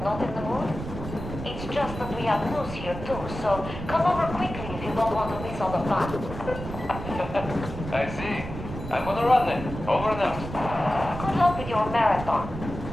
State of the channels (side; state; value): right; noise; rumble, 9 dB below the sound